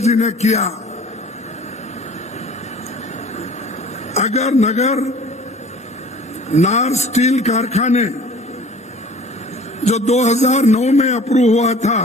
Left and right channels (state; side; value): normal; both; correlation 0.47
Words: जी ने किया। अगर नगर नार स्टील कारखाने जो 2009 में अप्रूव हुआ था,